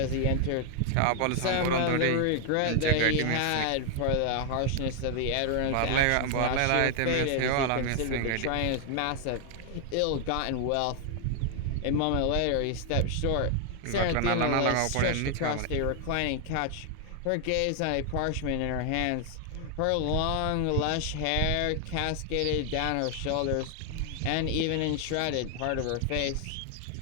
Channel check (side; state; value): both; different; correlation 0.00